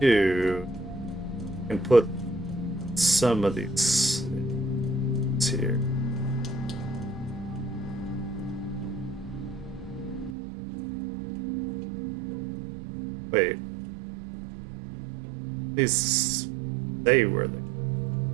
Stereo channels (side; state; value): left; drops out; at 10.4 s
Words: can put some of these here. Wait. These they were